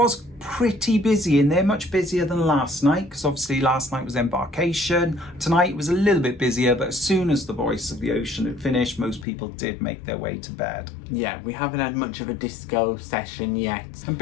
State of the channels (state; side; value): drops out; right; at 9.2 s